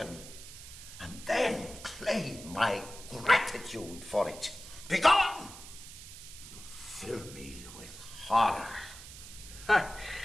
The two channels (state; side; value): noise; right; hiss, 14 dB below the sound